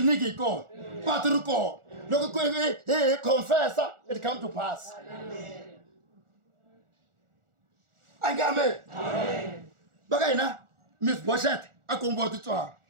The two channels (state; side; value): late; left; 1.4 ms